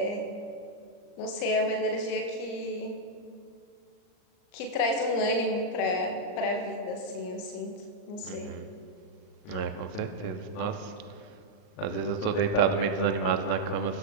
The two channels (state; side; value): late; right; 39 ms